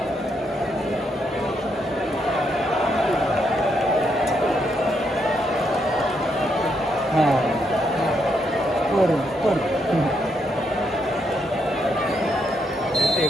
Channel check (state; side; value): normal; both; correlation 0.78